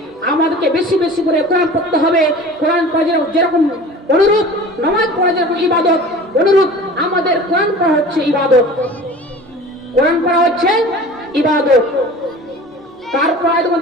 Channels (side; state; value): both; normal; correlation 0.40